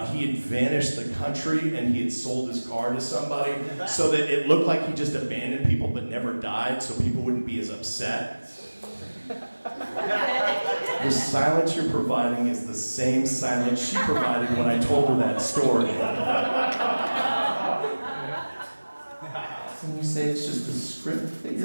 he had vanished the country and he had sold his car to somebody so that it looked like he just abandoned people but never died so people wouldn't be as upset. The silence you're providing is the same silence she provided when I told her that story. you say it's just a script that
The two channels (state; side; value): inverted; both; correlation -1.00